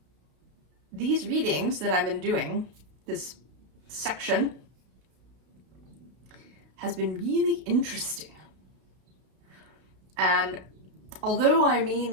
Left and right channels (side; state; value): left; late; 32 ms